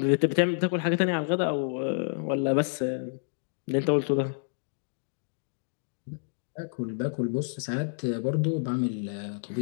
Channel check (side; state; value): right; silent; digital silence